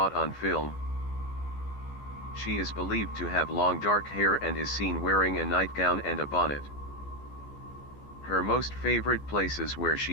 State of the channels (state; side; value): late; right; 14 ms